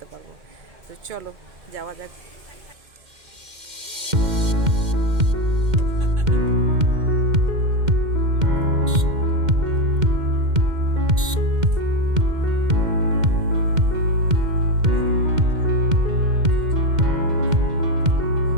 পারবো। তো চলো যাওয়া যাক।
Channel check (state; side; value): late; left; 2.1 ms